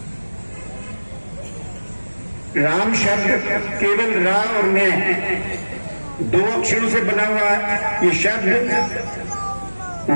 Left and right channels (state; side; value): inverted; both; correlation -1.00